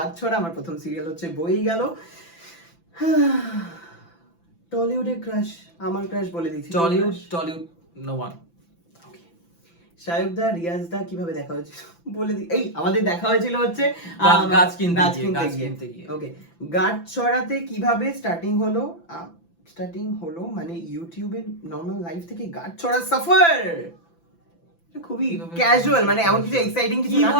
ছড়া, আমার প্রথম সিরিয়াল হচ্ছে বই গেল। টলিউডের ক্রাশ, আমার ক্রাশ বলে দিচ্ছি। Tollywood no one. Shayak da, Riaz da কিভাবে দেখা হয়েছিল বলে দি। এই আমাদের দেখা হয়েছিল হচ্ছে গাছ কিনতে গিয়ে। ওকে, গাছ ছড়াতে কিভাবে স্টার্টিং হলো মানে ইউটিউবে নরমাল লাইফ থেকে গাছ ছড়া সফর খুবই ক্যাজুয়াল, মানে এমন কিছু এক্সাইটিং কিছু না।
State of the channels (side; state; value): right; late; 5.9 ms